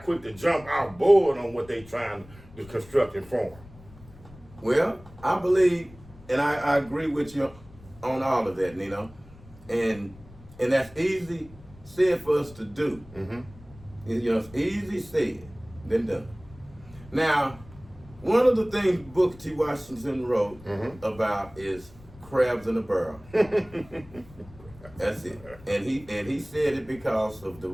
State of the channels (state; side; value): noise; left; rumble, 21 dB below the sound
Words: quick to jump out board on what they trying to construct and form. Well, I believe, and I agree with you on all of that, Nino. And that's easy said for us to do. Mm-hmm. It's easy said than done. Now, One of the things Booker T. Washington wrote about is crabs in a barrel. That's it. And he said it because of the